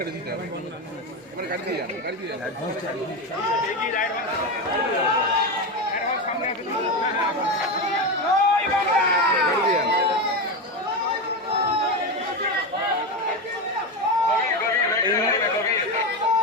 দিতে হবে গাড়ি দিয়ে যান গাড়ি দিয়ে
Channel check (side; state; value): both; normal; correlation 0.15